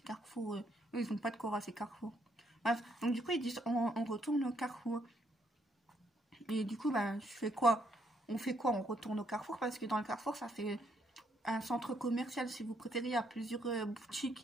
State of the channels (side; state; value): both; normal; correlation 0.73